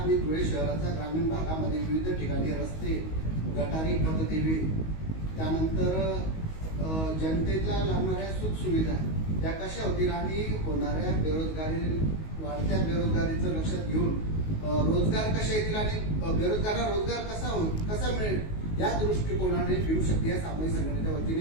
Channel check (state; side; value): late; right; 19 ms